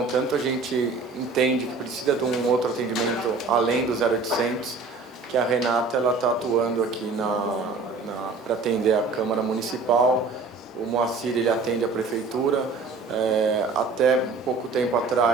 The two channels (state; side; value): quieter; left; 4.1 dB